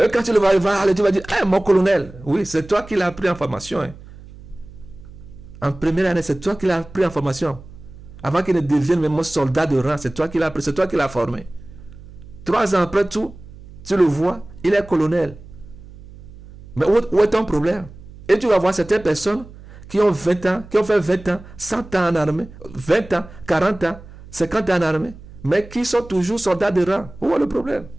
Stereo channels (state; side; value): noise; right; hum, 18 dB below the sound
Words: quand tu le vas voir, tu vas dire, mon colonel, oui, c'est toi qui l'as pris en formation. En première année, c'est toi qui l'as pris en formation. Avant qu'il ne devienne même soldat de rang, c'est toi qui l'as pris, c'est toi qui l'as formé. 3 ans après tout, tu le vois, il est colonel. Mais où est ton problème? Et tu vas voir certaines personnes qui ont 20 ans, qui ont fait 20 ans, 100 ans en armée, 20 ans, 40 ans, 50 ans en armée, mais qui sont toujours soldats de rang. Où est le problème?